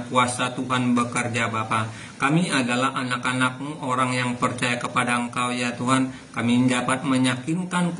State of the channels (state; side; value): identical; both; correlation 1.00